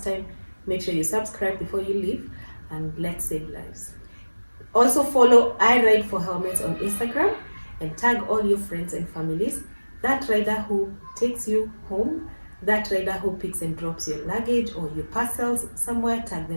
time, make sure you subscribe before you leave, and let's save lives. Also follow I Ride for Helmets on Instagram and tag all your friends and families. That rider who takes you home, that rider who picks and drops your luggage or your parcels somewhere, tag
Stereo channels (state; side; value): inverted; both; correlation -1.00